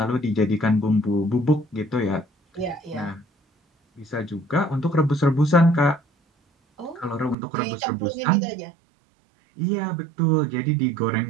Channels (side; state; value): left; drops out; at 7.4 s